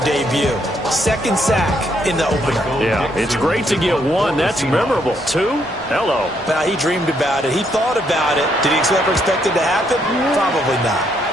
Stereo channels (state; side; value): normal; both; correlation 0.73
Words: 2nd sack in the opener. Yeah, it's great to get 1. That's memorable. 2? Hello. Well, he dreamed about it. He thought about it. Did he ever expect it to happen? Probably not.